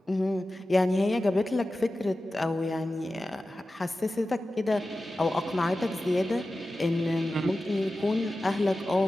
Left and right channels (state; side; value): normal; both; correlation 0.94